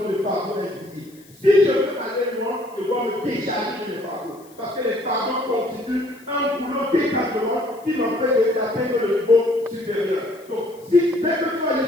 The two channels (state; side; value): noise; left; hiss, 27 dB below the sound